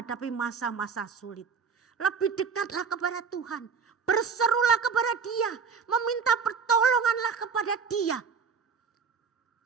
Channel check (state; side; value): quieter; left; 5.8 dB